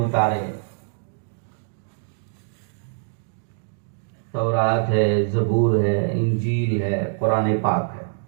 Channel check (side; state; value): left; silent; digital silence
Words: تورات ہے، زبور ہے، انجیل ہے، قرآن پاک ہے،